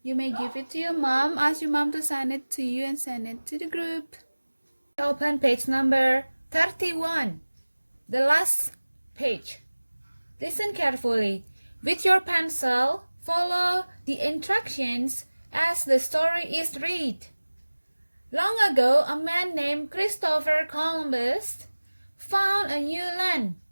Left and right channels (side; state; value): both; inverted; correlation -1.00